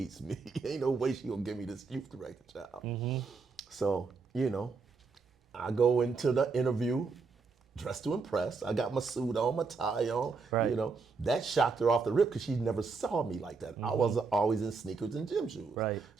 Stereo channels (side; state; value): left; quieter; 4.7 dB